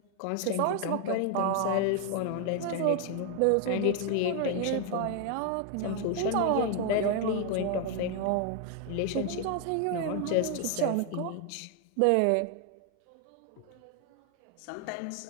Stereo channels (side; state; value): both; different; correlation 0.01